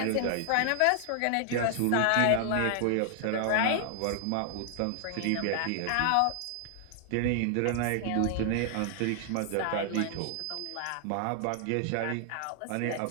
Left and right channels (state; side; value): different; both; correlation 0.00